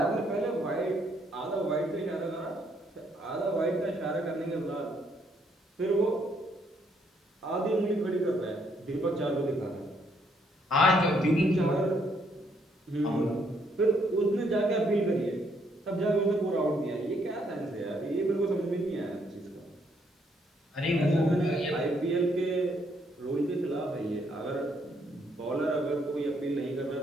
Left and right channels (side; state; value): both; normal; correlation 0.71